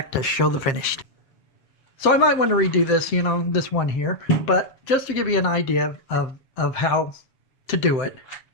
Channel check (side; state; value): right; late; 7.7 ms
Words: to show the finished. So I might want to redo this, you know, this one here, but just to give you an idea of how to do it.